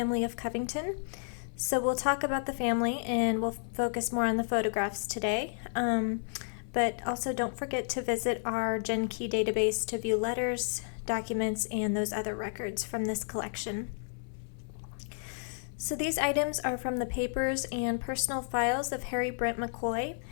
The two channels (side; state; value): right; silent; 57 dB below the other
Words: of Covington. So we'll talk about the family and we'll focus more on the photographs today. But also don't forget to visit our GenKey database to view letters, documents, and those other records from this collection. So these items are from the papers and personal files of Harry Brent Mackoy,